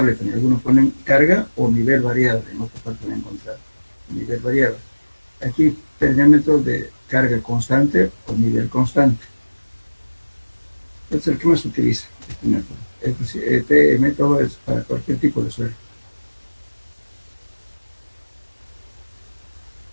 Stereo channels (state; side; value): inverted; both; correlation -1.00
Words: También algunos ponen carga o nivel variable, en otra parte van a encontrar nivel variable. Aquí tenemos el método de carga constante o nivel constante. Este es el que más se utiliza, este método. Este método es para cualquier tipo de suelo.